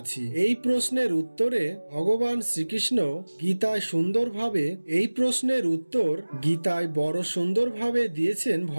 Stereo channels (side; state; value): both; inverted; correlation -1.00